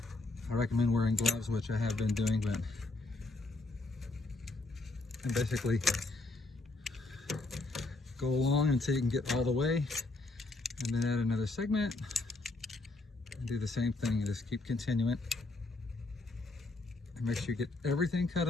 I recommend wearing gloves, which I have been doing, but and basically go along until you can get all the way, and then add another segment and do the same thing and just keep continuing. And make sure you get everything cut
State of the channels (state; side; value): quieter; right; 3.2 dB